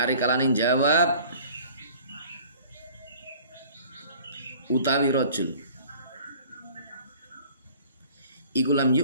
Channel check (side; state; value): both; inverted; correlation -0.49